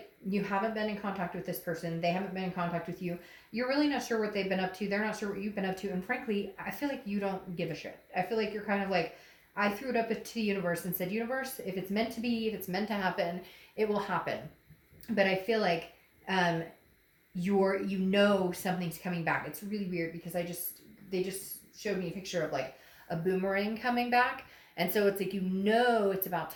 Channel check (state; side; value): identical; both; correlation 1.00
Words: you haven't been in contact with this person. They haven't been in contact with you. You're really not sure what they've been up to. They're not sure what you've been up to. And frankly, I feel like you don't give a shit. I feel like you're kind of like, I threw it up to the universe and said, universe, if it's meant to be, if it's meant to happen, it will happen. But I feel like you know something's coming back. It's really weird because they just showed me a picture of like a boomerang coming back, and so it's like, you know, it's about